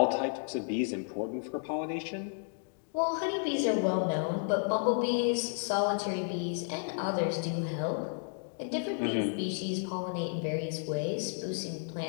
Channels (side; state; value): right; silent; 56 dB below the other